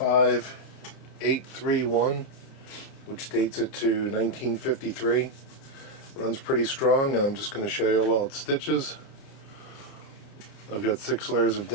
which dates it to 1953. Runs pretty strong, and I'm just going to show you how well it stitches. I've got 6 layers of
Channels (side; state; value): right; late; 30 ms